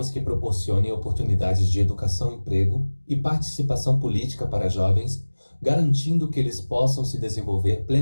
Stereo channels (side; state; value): both; inverted; correlation -1.00